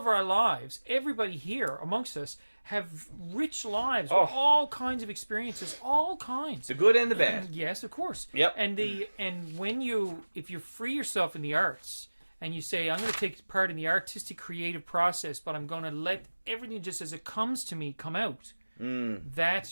our lives, everybody here amongst us have rich lives with all kinds of experiences, all kinds. The good and the bad. Yes, of course. Yep. And if you free yourself in the arts and you say, I'm going to take part in the artistic creative process, but I'm going to let everything just as it comes to me come out.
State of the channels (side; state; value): both; inverted; correlation -1.00